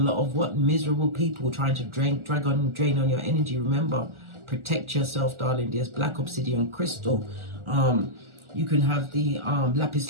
of what? Miserable people trying to drain on your energy. Remember, protect yourself, darling dears. Black obsidian crystal. You can have the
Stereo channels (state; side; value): late; left; 1.4 ms